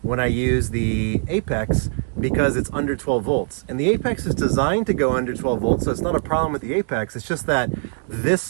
when I use the Apex because it's under 12 volts. And the Apex is designed to go under 12 volts, so it's not a problem with the Apex. It's just that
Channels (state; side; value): silent; left; digital silence